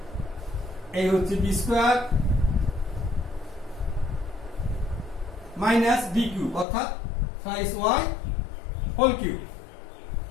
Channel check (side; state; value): right; drops out; at 6.7 s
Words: এই হচ্ছে b square minus B cube অর্থাৎ ট্রাইস ওয়াই হোল কিউব।